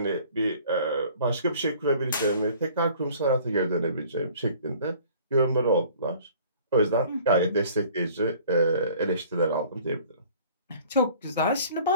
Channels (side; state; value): both; inverted; correlation -0.51